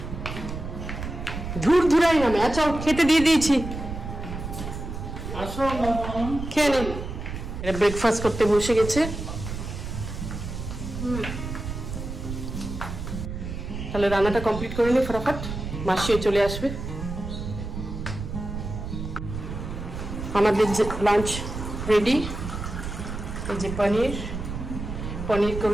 ধুর ধুরাই নামে আচ্ছা খেতে দিয়ে দিয়েছি খেয়ে নে ব্রেকফাস্ট করতে বসে গেছে তাহলে রান্নাটা কমপ্লিট করে নি ফটাফট মাসিও চলে আসবে আমাদের লাঞ্চ রেডি এই যে পনির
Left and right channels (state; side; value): noise; right; rumble, 7 dB below the sound